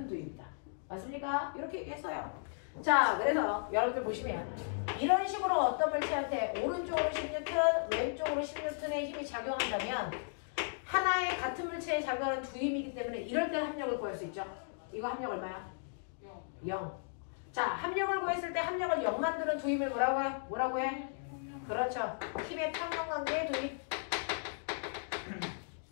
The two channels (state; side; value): silent; right; digital silence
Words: 두입니다. 맞습니까? 이렇게 얘기했어요. 자, 그래서 여러분들 보시면 이런 식으로 어떤 물체한테 오른쪽으로 10N, 왼쪽으로 10N의 힘이 작용한다면 하나의 같은 물체에 작용하는 두 힘이기 때문에 이럴 때 합력을 구할 수 있죠. 이거 합력 얼마야? 0. 자, 합력을 구했을 때 합력을 0 만드는 두 힘을 뭐라고 해? 뭐라고 해? 그렇죠. 힘의 평형관계의 두 힘.